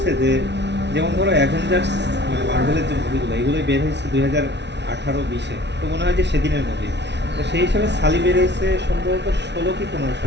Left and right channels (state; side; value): late; left; 0.50 ms